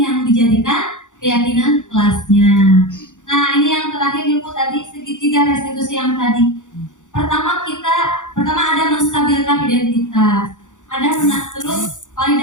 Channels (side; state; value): right; late; 0.86 ms